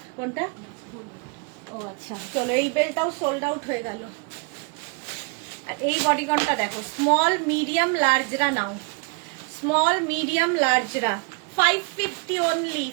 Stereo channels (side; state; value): left; quieter; 32.7 dB